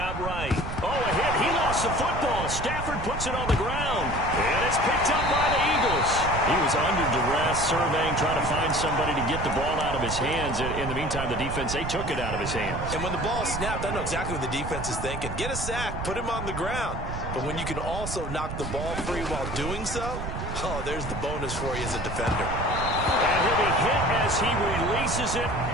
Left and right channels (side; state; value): right; noise; rumble, 6 dB below the sound